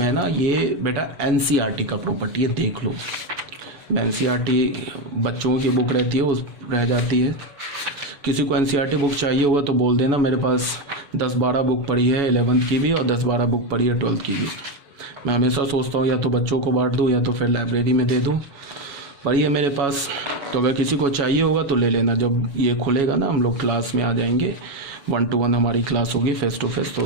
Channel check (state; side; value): late; left; 7.1 ms